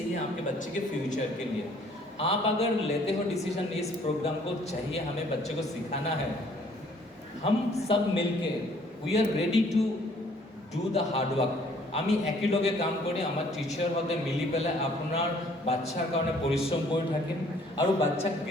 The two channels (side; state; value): both; normal; correlation 0.60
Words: है आपके बच्चे के फ्यूचर के लिए आप अगर लेते हो डिसीजन इस प्रोग्राम को चाहिए हमें बच्चे को सिखाना है हम सब मिलके we are ready to do the hard work আমি একেলগে কাম কৰি আমাৰ টিচাৰ হতে মিলি পেলাই আপোনাৰ বাচ্চাৰ কাৰণে পৰিশ্ৰম কৰি থাকিম আৰু বাচ্চাক